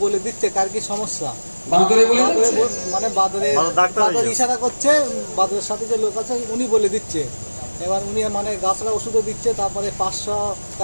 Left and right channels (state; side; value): inverted; both; correlation -1.00